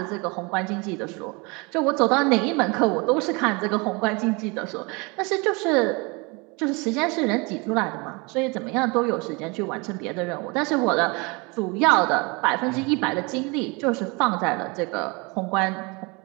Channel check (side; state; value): left; quieter; 28.4 dB